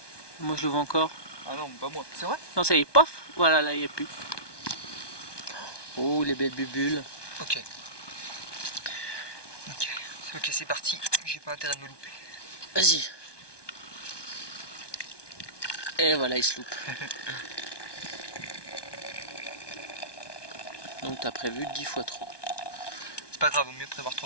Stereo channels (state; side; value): late; right; 1.2 ms